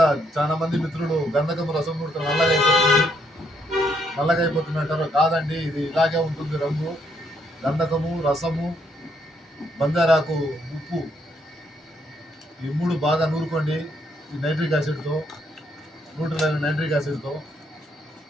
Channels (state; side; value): normal; both; correlation 0.73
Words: చాలా మంది మిత్రులు గంధకము రసం నూడితే నల్లగా అయిపోతుంది అంటారు. కాదండి, ఇది ఇలాగే ఉంటుంది రంగు. గంధకము, రసము, బంగారాకు, ఉప్పు ఈ 3 బాగా నూరుకోండి. ఈ నైట్రిక్ యాసిడ్తో, న్యూట్రల్ అయిన నైట్రిక్ యాసిడ్తో.